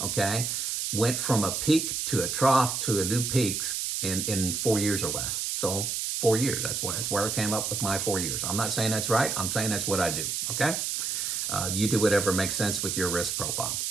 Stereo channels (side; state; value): right; noise; hiss, 1 dB below the sound